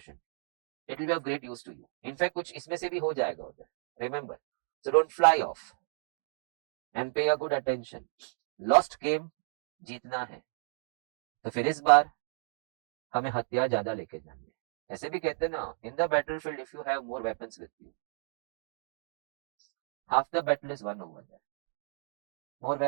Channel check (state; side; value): silent; left; digital silence